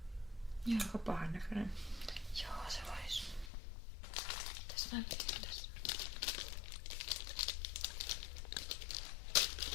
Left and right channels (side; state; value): right; drops out; at 3.5 s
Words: Joo. Aika pahan näköinen. Joo, se vois. Tässä näkyy tässä.